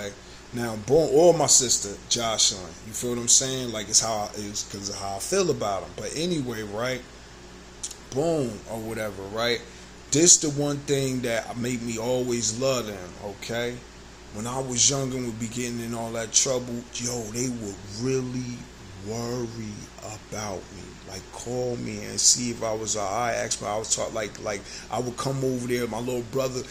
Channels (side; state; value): both; identical; correlation 1.00